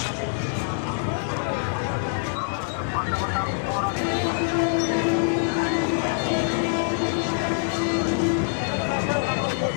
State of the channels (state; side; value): silent; right; digital silence